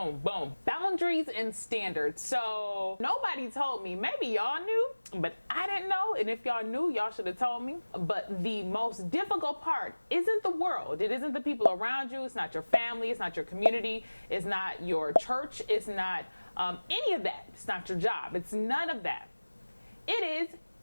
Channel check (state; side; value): inverted; both; correlation -1.00